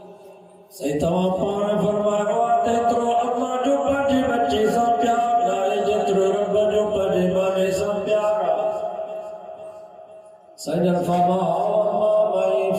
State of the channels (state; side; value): identical; both; correlation 1.00